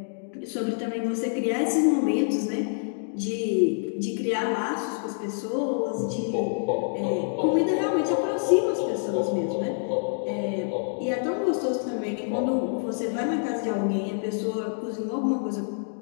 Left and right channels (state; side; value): silent; right; digital silence